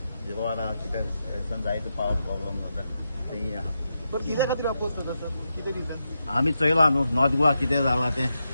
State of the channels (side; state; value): both; inverted; correlation -0.87